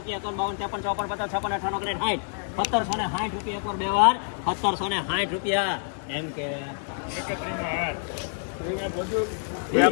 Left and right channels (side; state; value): right; silent; digital silence